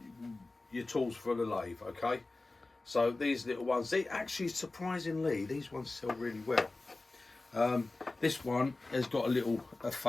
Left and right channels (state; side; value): quieter; right; 3.2 dB